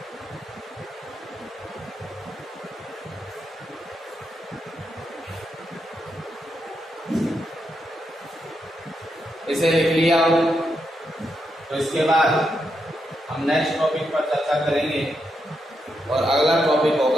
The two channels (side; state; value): both; normal; correlation 0.83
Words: इसे लिख लिया हो, तो इसके बाद हम नेक्स्ट टॉपिक पर चर्चा करेंगे और अगला टॉपिक